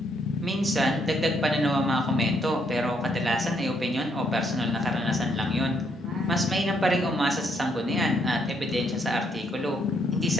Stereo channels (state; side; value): normal; both; correlation 0.72